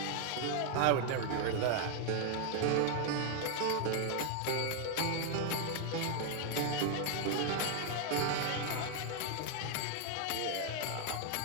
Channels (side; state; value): both; different; correlation 0.00